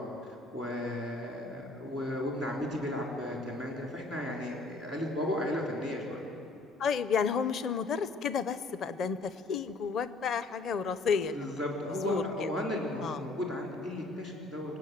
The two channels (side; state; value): right; quieter; 3.3 dB